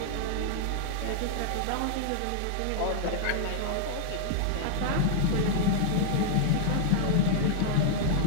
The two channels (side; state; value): both; different; correlation -0.01